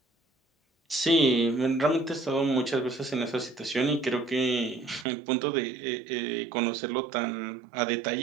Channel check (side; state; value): left; drops out; at 5.1 s